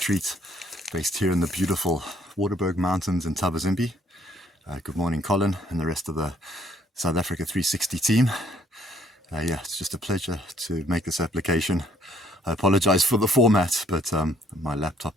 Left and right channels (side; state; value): both; normal; correlation 0.64